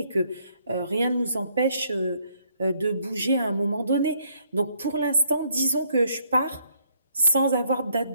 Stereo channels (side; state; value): both; inverted; correlation -0.69